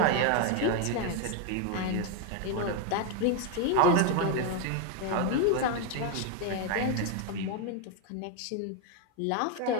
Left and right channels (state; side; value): different; both; correlation 0.01